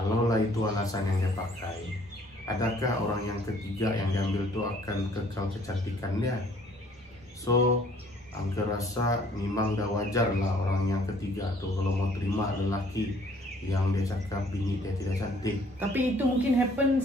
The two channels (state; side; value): normal; both; correlation 0.59